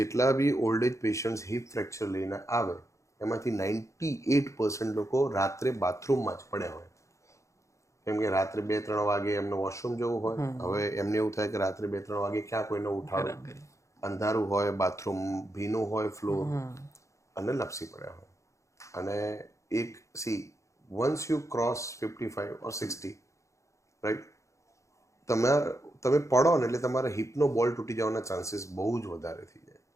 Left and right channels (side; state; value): right; late; 0.15 ms